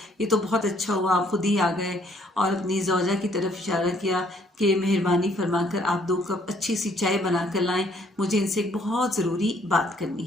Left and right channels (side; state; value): both; normal; correlation 0.65